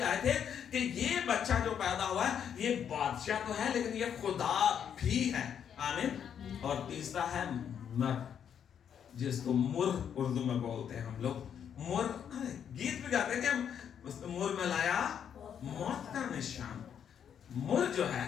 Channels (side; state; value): right; quieter; 8.4 dB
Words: आए थे कि ये बच्चा जो पैदा हुआ है ये बादशाह तो है, लेकिन ये खुदा भी है। आमीन। और तीसरा है मर, जिसको मुर उर्दू में बोलते हैं हम लोग। मुर, गीत भी गाते हैं कि हम मुर में लाया मौत का निशान। मुर जो है,